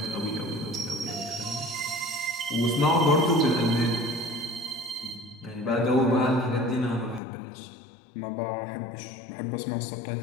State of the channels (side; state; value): right; drops out; at 7.2 s